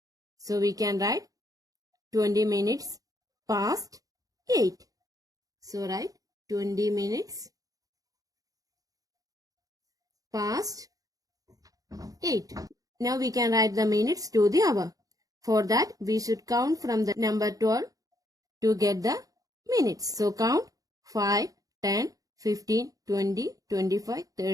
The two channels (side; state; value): left; late; 0.17 ms